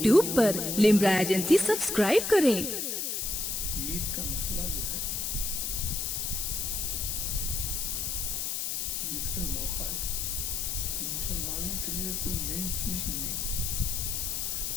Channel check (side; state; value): left; noise; hiss, 1 dB below the sound